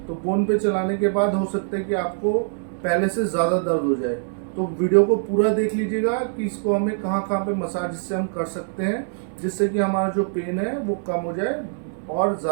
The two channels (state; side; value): silent; left; 63 dB below the other